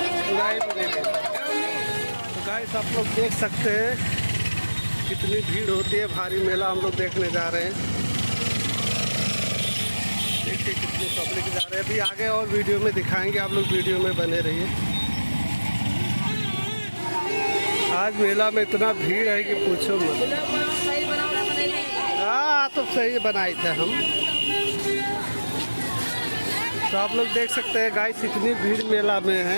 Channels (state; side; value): inverted; both; correlation -1.00